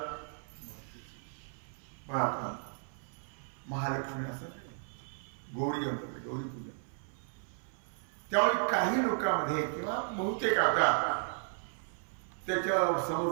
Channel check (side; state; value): left; silent; 55 dB below the other